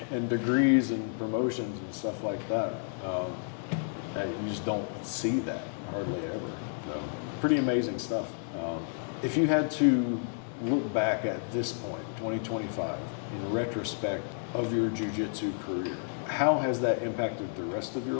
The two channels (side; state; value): right; silent; digital silence